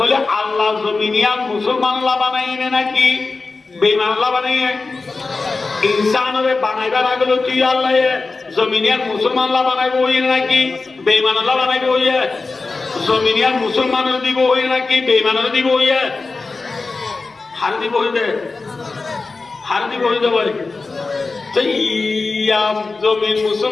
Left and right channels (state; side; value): quieter; right; 3.9 dB